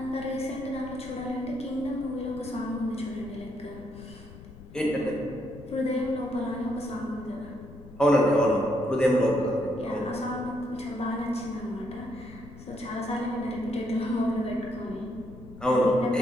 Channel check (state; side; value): noise; left; rumble, 17 dB below the sound